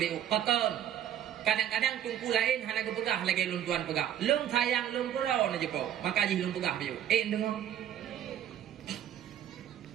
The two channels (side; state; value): left; quieter; 10.7 dB